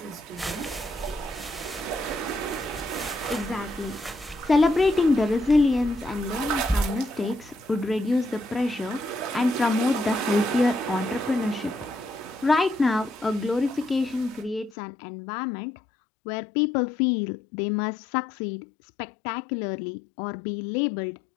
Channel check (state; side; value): drops out; right; at 14.7 s